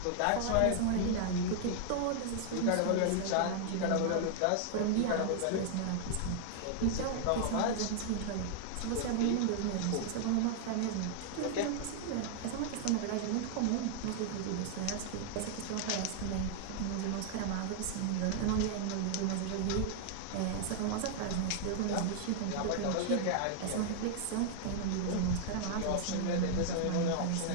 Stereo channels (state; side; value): different; both; correlation 0.00